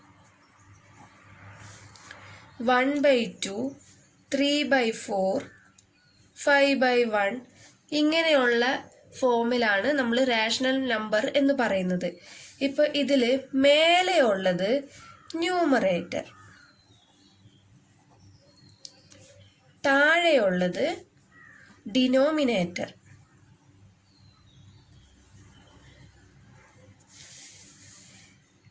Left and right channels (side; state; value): both; identical; correlation 1.00